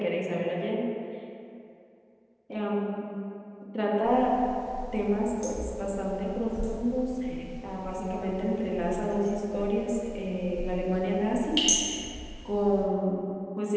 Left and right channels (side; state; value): both; identical; correlation 1.00